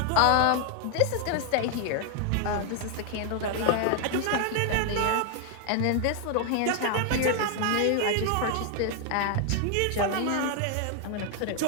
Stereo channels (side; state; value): both; different; correlation 0.00